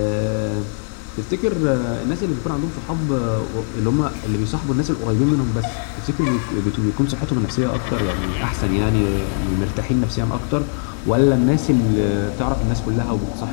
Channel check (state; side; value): silent; right; 65 dB below the other